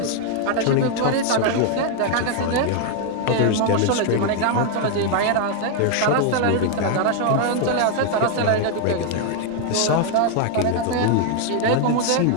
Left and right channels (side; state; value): both; different; correlation 0.00